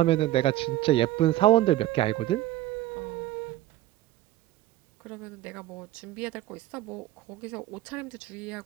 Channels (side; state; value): left; quieter; 14.8 dB